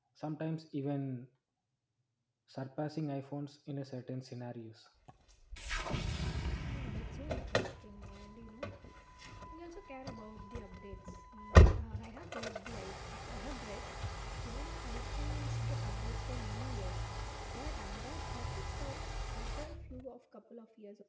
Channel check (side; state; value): both; identical; correlation 1.00